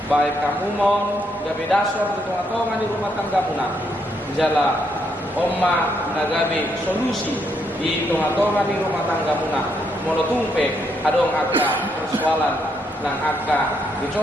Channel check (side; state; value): both; normal; correlation 0.76